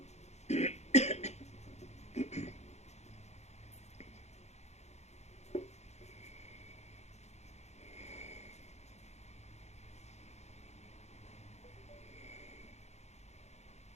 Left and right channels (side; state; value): right; late; 0.32 ms